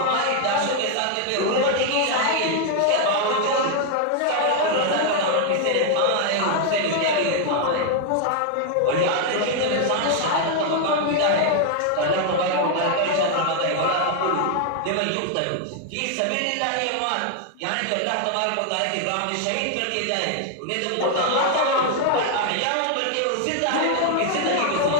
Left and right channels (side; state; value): both; different; correlation 0.00